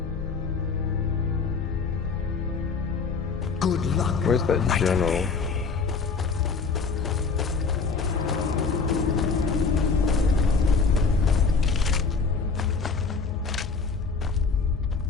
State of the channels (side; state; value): right; quieter; 4.8 dB